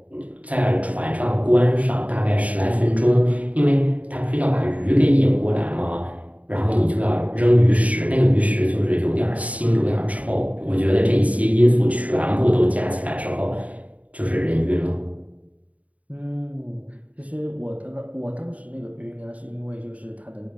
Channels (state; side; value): late; left; 0.069 ms